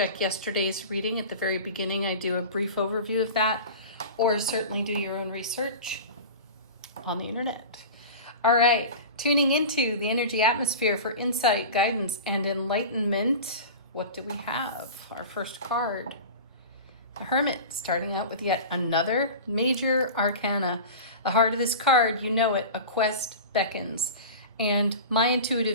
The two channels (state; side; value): inverted; both; correlation -0.33